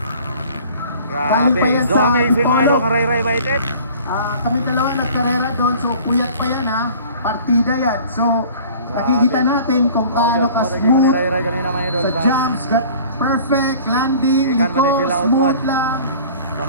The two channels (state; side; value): inverted; both; correlation -0.47